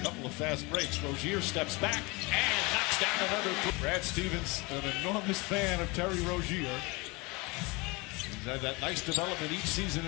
couple of fast breaks. Rozier steps back and knocks down another three. Brad Stevens, an enormous fan of Terry Rozier. He's had that nice development each season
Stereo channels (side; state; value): right; quieter; 26.0 dB